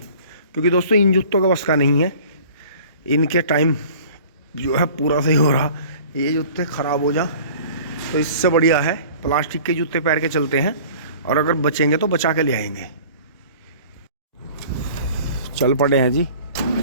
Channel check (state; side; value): inverted; both; correlation -0.47